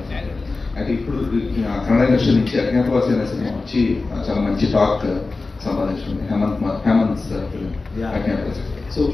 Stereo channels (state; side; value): quieter; right; 3.7 dB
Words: అయితే ఇప్పుడు కన్నడ ఇండస్ట్రీ నుంచి అజ్ఞాతవాసి అనే సినిమా వచ్చి చాలా మంచి టాక్ సంపాదించింది. Hemanth film Agnyathavasi. So